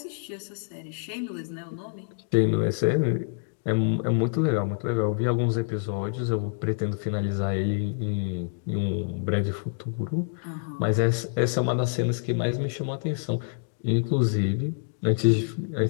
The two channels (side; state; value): right; silent; digital silence